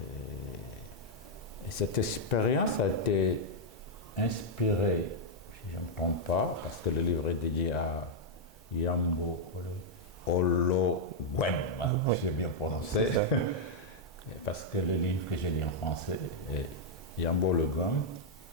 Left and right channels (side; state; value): both; normal; correlation -0.04